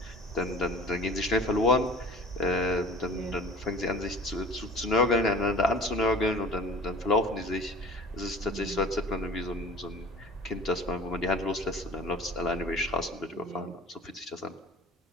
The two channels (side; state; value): both; normal; correlation 0.44